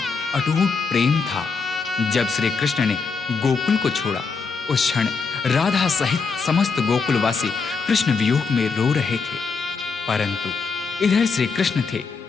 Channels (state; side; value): quieter; right; 4.9 dB